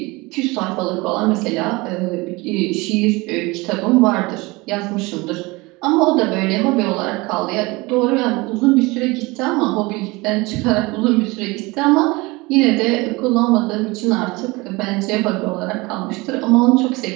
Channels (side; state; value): left; quieter; 23.6 dB